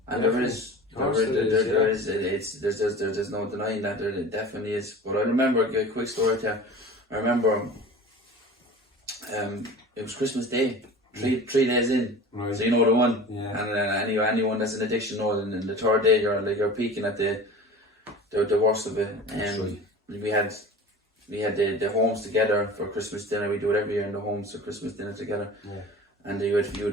And there's no denying that, there definitely is. But I remember a quick story there. I remember it was Christmas Day. 3 days in, right. So you know the one, and anyone that's an addiction knows. And in the third day, you're peaking at the worst of it. And we had the homes together for Christmas dinner. We do it every year in the homes for Christmas dinner together. Yeah. And you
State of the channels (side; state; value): both; normal; correlation 0.38